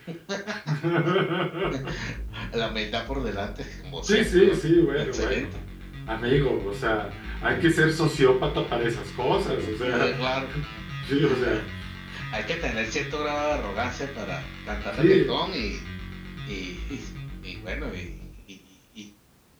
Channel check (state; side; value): identical; both; correlation 1.00